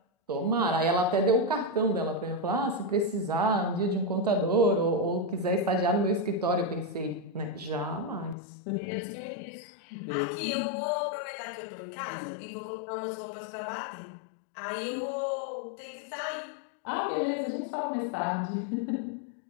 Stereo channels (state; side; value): drops out; right; at 8.3 s